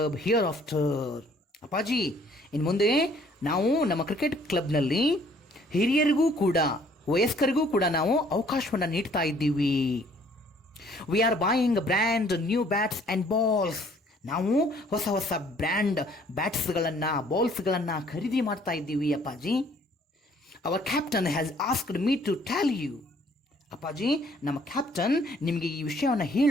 hereafter. ಅಪ್ಪಾಜಿ, ಇನ್ನು ಮುಂದೆ ನಾವು ನಮ್ಮ ಕ್ರಿಕೆಟ್ ಕ್ಲಬ್ನಲ್ಲಿ ಹಿರಿಯರಿಗೂ ಕೂಡ ವಯಸ್ಕರಿಗೂ ಕೂಡ ನಾವು ಅವಕಾಶವನ್ನು ನೀಡ್ತಾ ಇದ್ದೀವಿ. We are buying brand new bats and balls ನಾವು ಹೊಸ ಹೊಸ ಬ್ರ್ಯಾಂಡ್ ಬ್ಯಾಟ್ಸ್ಗಳನ್ನು ಬಾಲ್ಸ್ಗಳನ್ನು ಖರೀದಿ ಮಾಡ್ತಾ ಇದ್ದೀವಿ ಅಪ್ಪಾಜಿ. Our captain has asked me to tell you. ಅಪ್ಪಾಜಿ, ನಮ್ಮ ಕ್ಯಾಪ್ಟನ್ ನಿಮಗೆ ಈ ವಿಷಯವನ್ನು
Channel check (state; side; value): normal; both; correlation 0.60